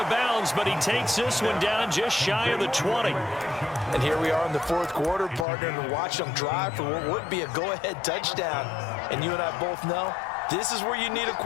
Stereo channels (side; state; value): right; drops out; at 5.5 s